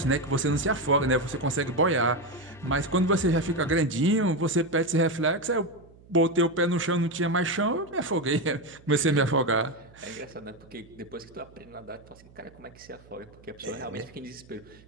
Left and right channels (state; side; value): noise; right; hum, 25 dB below the sound